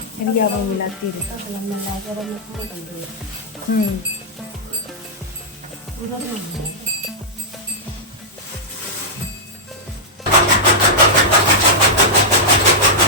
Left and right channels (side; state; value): both; normal; correlation -0.08